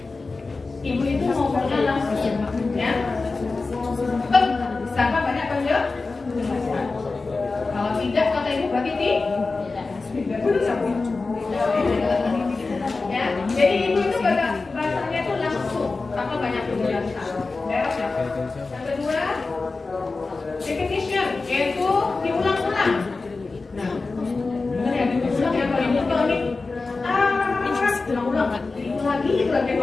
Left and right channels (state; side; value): quieter; right; 3.8 dB